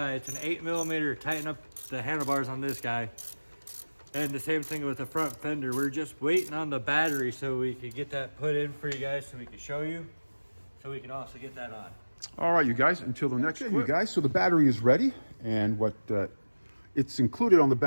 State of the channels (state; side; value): inverted; both; correlation -1.00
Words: an 8mm, tighten up the handlebars on this guy. And the same thing with the front fender. We're just waiting on the battery so we can get that put in for you guys so we can show you. So we can also get that on. All right, you guys, until the next clip. You guys, so the battery is ready. And what it's included on the